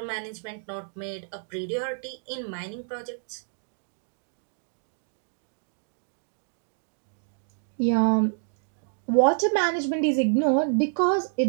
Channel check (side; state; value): left; silent; digital silence